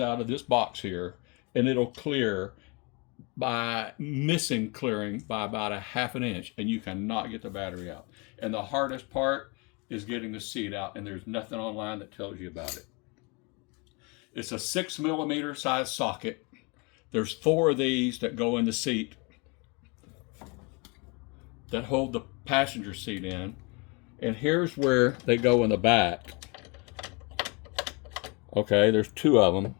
of this box here, and it'll clear by missing clearing by about a half an inch, and you cannot get the battery out. And the hardest part is getting the seat out, and there's nothing online that tells you about it. It's a 6mm size socket. There's 4 of these that go in the seat that hold the passenger seat in, and here's where they go in the back. Okay, there's 2 of them,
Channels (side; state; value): right; quieter; 30.1 dB